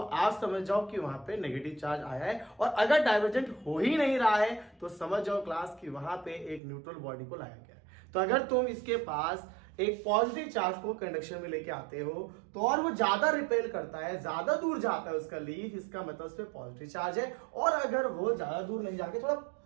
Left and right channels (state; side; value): drops out; left; at 6.6 s